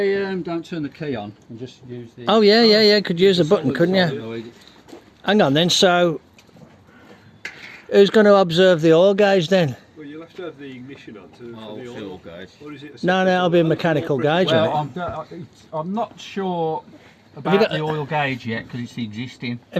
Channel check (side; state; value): both; identical; correlation 1.00